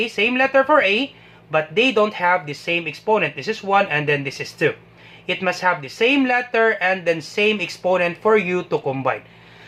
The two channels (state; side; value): identical; both; correlation 1.00